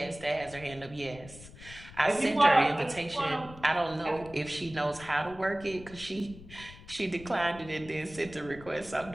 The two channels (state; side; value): noise; left; rumble, 18 dB below the sound